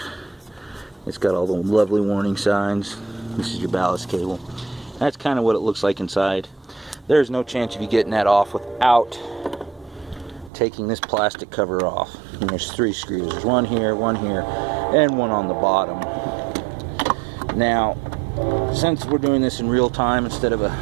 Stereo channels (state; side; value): drops out; left; at 10.5 s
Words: It's got all the lovely warning signs. This is your ballast cable. That's kind of what it looks like inside. There's no chance of you getting that off without taking this plastic cover off. And there's 3 screws. There's one here, and one on the bottom. Now, since we're doing this in real time instead of a